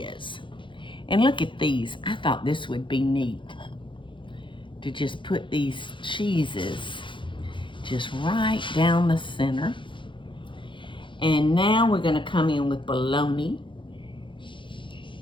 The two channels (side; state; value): right; late; 0.24 ms